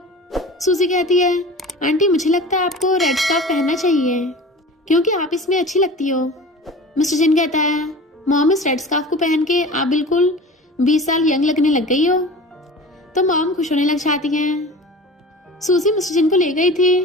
सूजी कहती है आंटी मुझे लगता है आपको रेड स्कार्फ पहनना चाहिए क्योंकि आप इसमें अच्छी लगती हो। मिस्टर जिन कहता है मॉम इस रेड स्कार्फ को पहन के आप बिल्कुल 20 साल यंग लगने लग गई हो। तो मॉम खुश होने लग जाती हैं। सूजी मिस्टर जिन को ले गई थी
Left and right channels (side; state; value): both; normal; correlation 0.37